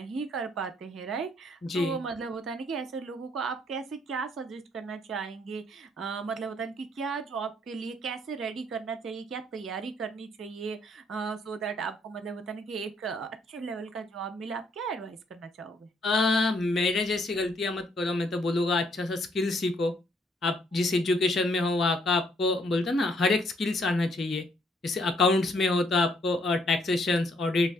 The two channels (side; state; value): both; normal; correlation 0.69